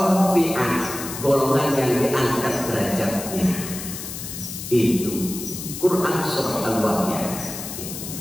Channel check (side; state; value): left; noise; hiss, 8 dB below the sound